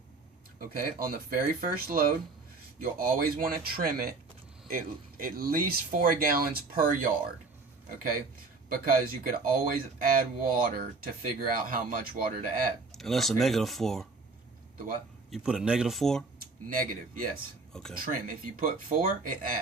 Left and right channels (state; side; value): quieter; left; 3.9 dB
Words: Okay, on the very first load, you'll always want to trim it at least 4 gallons per yard. Okay, because you could always add water to figure out how much water to add. And that's okay. a -4. The what? You put a -4? Negative, yes. Okay. Trim. If you put 4, it